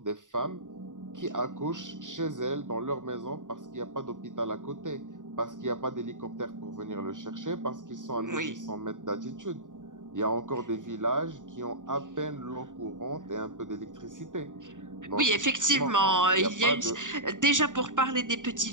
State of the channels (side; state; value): left; late; 0.87 ms